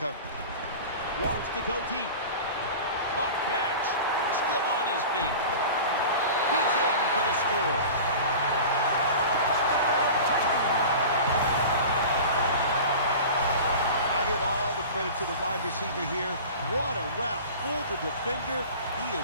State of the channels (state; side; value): inverted; both; correlation -0.36